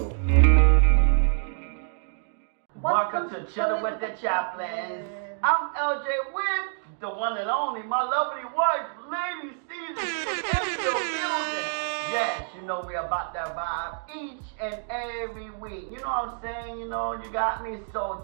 Welcome to Chilling With The Chaplins. I'm LJ with the one and only, my lovely wife, Lady Caesar, in the building. Yes, you know we about that vibe each and every week. You know what I'm saying? You know, you got me. So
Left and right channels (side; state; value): left; silent; digital silence